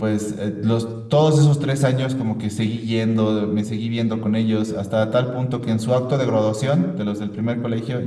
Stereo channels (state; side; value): identical; both; correlation 1.00